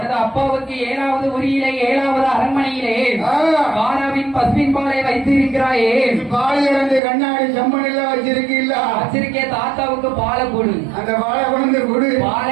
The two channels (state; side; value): drops out; left; at 7.0 s